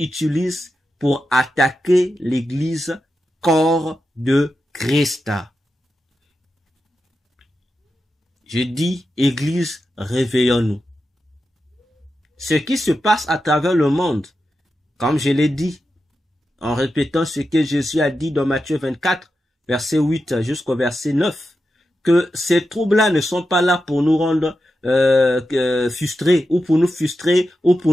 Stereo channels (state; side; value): normal; both; correlation 0.89